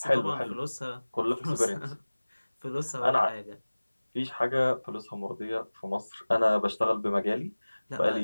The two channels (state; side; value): inverted; both; correlation -1.00